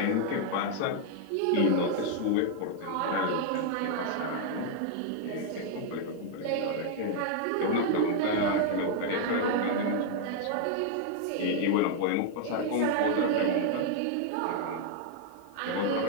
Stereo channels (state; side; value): different; both; correlation 0.00